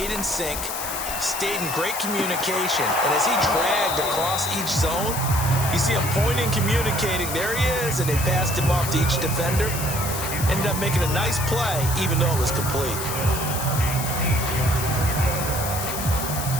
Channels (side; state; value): left; noise; hiss, 5 dB below the sound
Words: in sync, stayed in great communication. And as he dragged across each zone, you see him pointing, communicating. There he is, and they passed him off to each defender. Ended up making a nice play, even though it was complete.